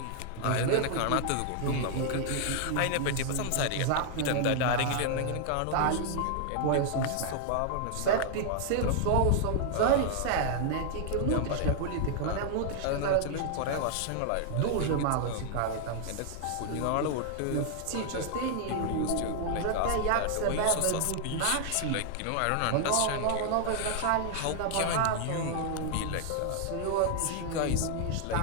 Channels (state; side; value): different; both; correlation 0.00